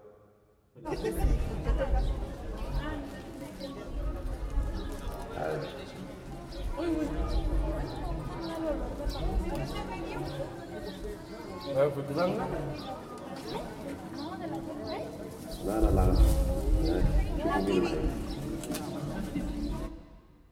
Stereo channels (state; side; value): identical; both; correlation 1.00